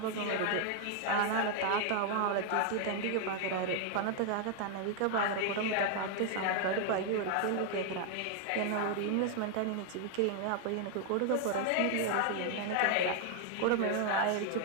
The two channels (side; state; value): both; different; correlation 0.00